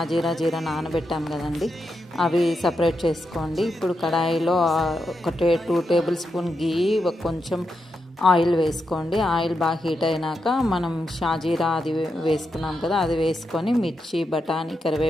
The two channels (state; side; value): normal; both; correlation 0.85